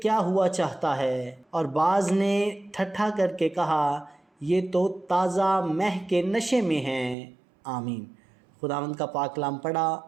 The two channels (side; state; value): left; drops out; at 7.2 s